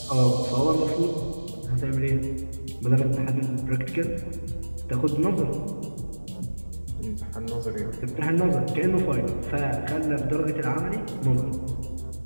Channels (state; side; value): inverted; both; correlation -1.00